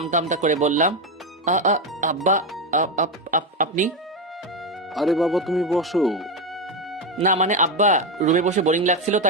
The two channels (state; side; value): normal; both; correlation 0.11